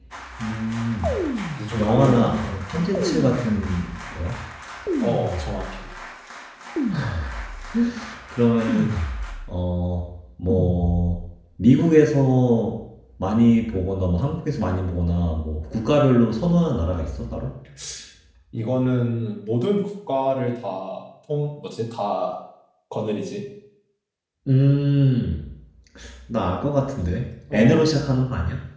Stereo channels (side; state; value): both; identical; correlation 1.00